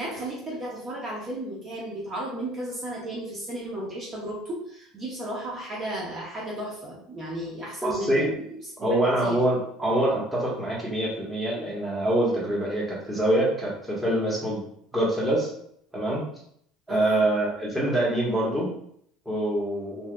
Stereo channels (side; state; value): both; normal; correlation 0.63